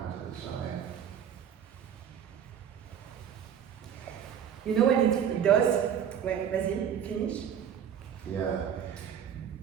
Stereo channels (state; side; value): quieter; left; 8.7 dB